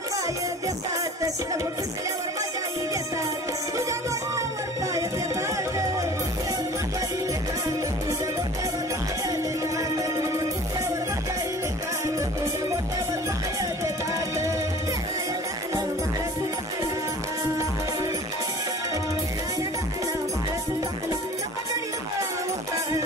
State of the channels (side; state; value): both; normal; correlation 0.44